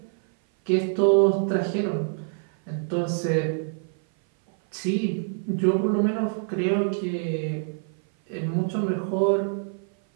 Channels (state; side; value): silent; left; 57 dB below the other